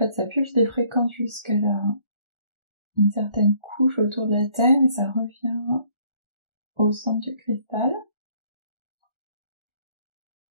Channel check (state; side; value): late; left; 1.4 ms